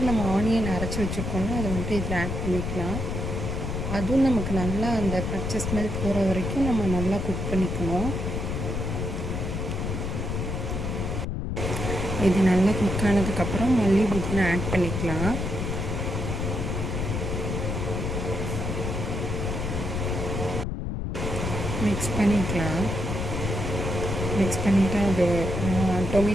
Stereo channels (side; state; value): left; noise; rumble, 2 dB below the sound